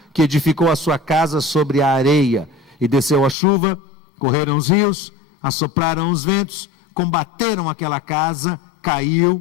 que edificou a sua casa sobre a areia. E desceu a chuva, correram os rios, assopraram os ventos, combateram aquela casa, caiu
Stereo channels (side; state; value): right; drops out; at 3.4 s